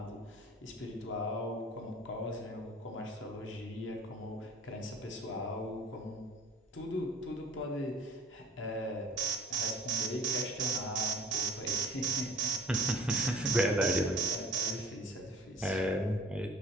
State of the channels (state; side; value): normal; both; correlation 0.51